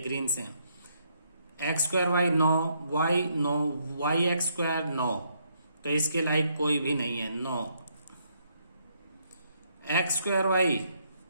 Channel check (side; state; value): both; inverted; correlation -0.73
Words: से है. X square y 9, y x square 9, तो इसके लाइक कोई भी नहीं है. 9 एक्स स्क्वायर वाई,